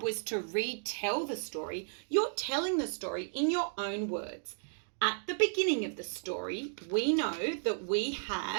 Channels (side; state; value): left; silent; digital silence